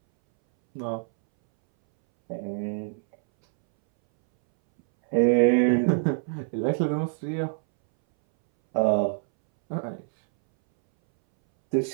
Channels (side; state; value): left; silent; 62 dB below the other